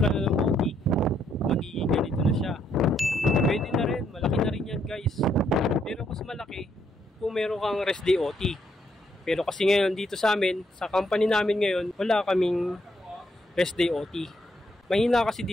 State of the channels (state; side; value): normal; both; correlation 0.73